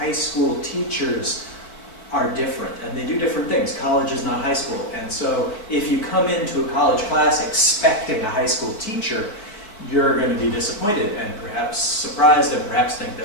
school teachers are different, and they do different things. College is not high school, and so if you come into a college class expecting a high school teacher, you're going to be disappointed and perhaps surprised and perhaps think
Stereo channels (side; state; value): right; late; 4.6 ms